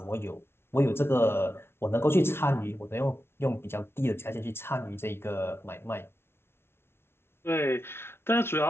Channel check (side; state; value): right; late; 0.12 ms